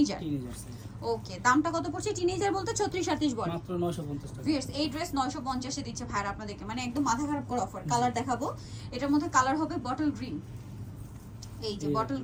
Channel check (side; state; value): both; identical; correlation 1.00